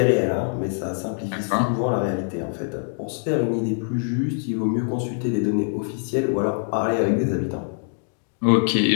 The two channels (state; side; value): silent; right; digital silence